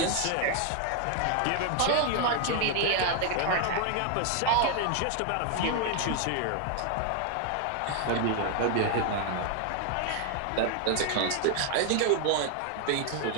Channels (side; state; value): both; different; correlation 0.00